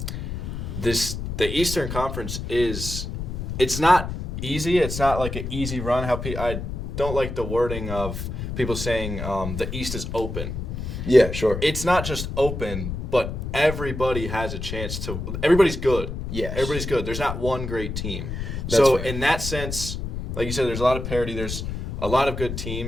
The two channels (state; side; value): noise; left; rumble, 5 dB below the sound